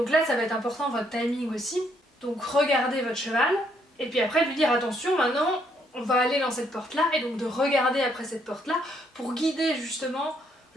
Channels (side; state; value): both; normal; correlation 0.71